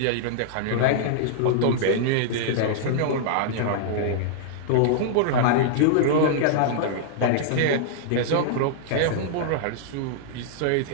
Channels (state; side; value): different; both; correlation -0.01